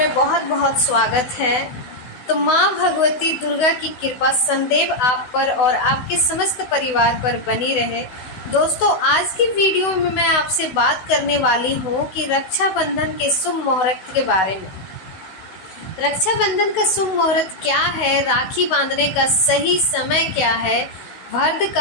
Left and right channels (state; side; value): late; right; 16 ms